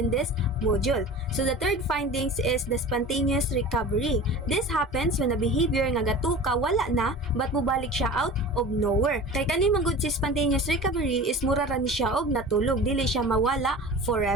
this module. So the third findings is the spontaneous recovery. This happens when a behavior nga gatuka wala na, but mubalik siya out of nowhere. Kay kani magud si spontaneous recovery is mura ra ni siya og natulog, dili siya mawala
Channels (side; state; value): both; normal; correlation 0.37